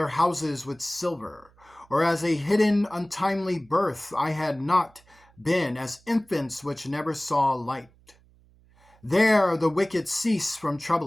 houses with silver, or as a hidden untimely birth I had not been, as infants which never saw light. There the wicked cease from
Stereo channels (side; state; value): right; noise; hum, 30 dB below the sound